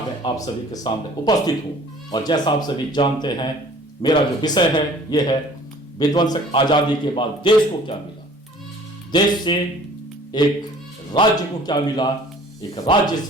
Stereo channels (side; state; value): both; normal; correlation 0.51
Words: में आप सभी के सामने उपस्थित हूं। और जैसा आप सभी जानते हैं, मेरा जो विषय है यह है विध्वंसक आजादी के बाद देश को क्या मिला, देश से एक राज्य को क्या मिला, एक राज्य